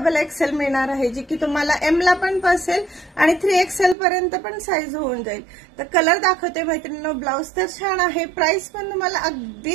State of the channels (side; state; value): left; drops out; at 4.0 s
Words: एक्सएल मिळणार आहे, जी की तुम्हाला एम ला पण बसेल आणि 3XL पर्यंत पण साईज होऊन जाईल। तर कलर दाखवते मैत्रिणींनो, ब्लाउज तर छान आहे, प्राइस पण तुम्हाला अगदी